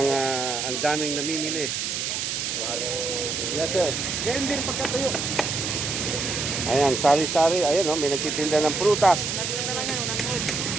ang daming namimili. Yes, sir. Ganyan din pagkatayo. Ayan, sari-sari. Ayan, oh, may nagtitinda ng prutas.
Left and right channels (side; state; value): right; noise; hiss, 2 dB below the sound